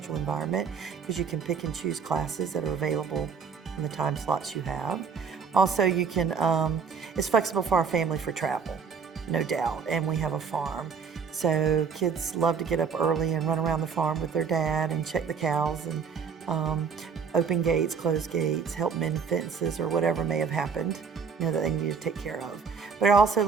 environment because you can pick and choose classes that are available in the time slots you have. Also, you can, it's flexible for our family for travel, no doubt, and we have a farm. So kids love to get up early and run around the farm with their dad and check the cows and open gates, close gates, help mend fences, or whatever may have happened, that they need to take care of. But it also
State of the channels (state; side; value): quieter; left; 5.9 dB